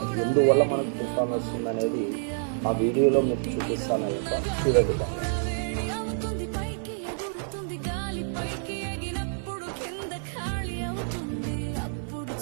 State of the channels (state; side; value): silent; left; 59 dB below the other